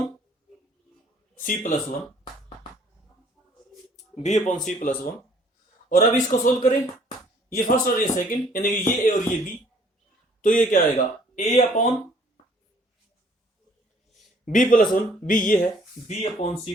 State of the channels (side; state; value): both; normal; correlation 0.59